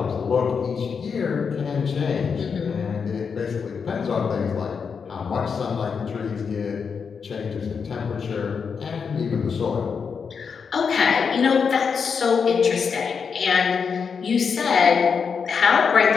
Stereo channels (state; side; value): quieter; right; 6.0 dB